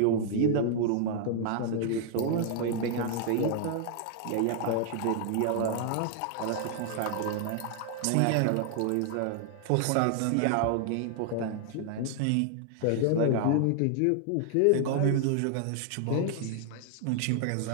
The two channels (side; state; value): both; different; correlation 0.00